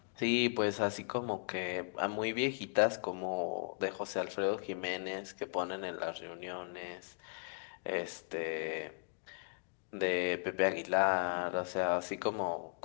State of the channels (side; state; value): right; silent; digital silence